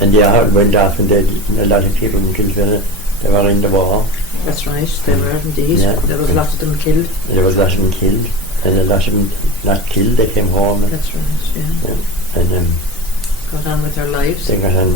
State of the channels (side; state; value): both; normal; correlation 0.28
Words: and the heart went off, and a lot of people in Kilfinane, they were in the war. That's right, they were indeed. Yeah. There was a lot of them killed. There was a lot of them killed, and a lot of them not killed. They came home. That's right, yeah. And got on with their lives. They got on